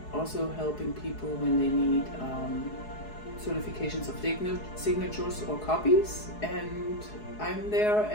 also helping people when they need certifications of signatures or copies, and I'm there,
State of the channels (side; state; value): right; late; 4.7 ms